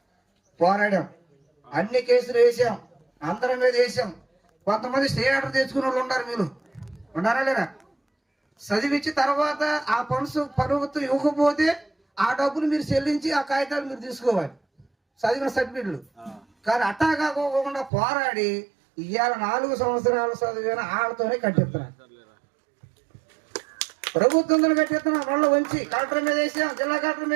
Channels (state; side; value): drops out; left; at 17.9 s